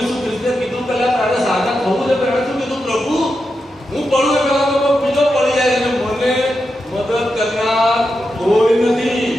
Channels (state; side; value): normal; both; correlation 0.88